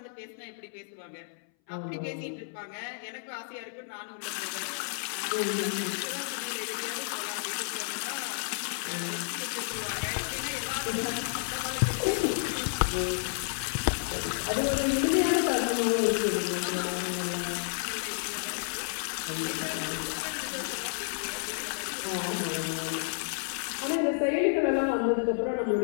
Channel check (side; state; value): right; silent; 57 dB below the other